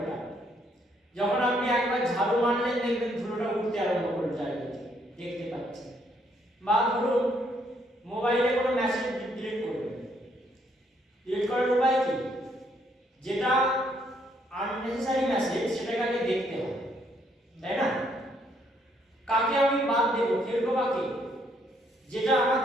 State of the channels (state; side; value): normal; both; correlation 0.70